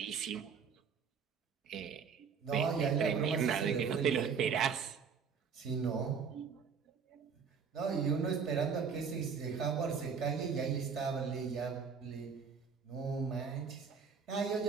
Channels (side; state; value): left; quieter; 6.2 dB